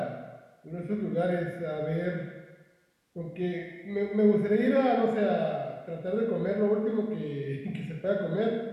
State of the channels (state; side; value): identical; both; correlation 1.00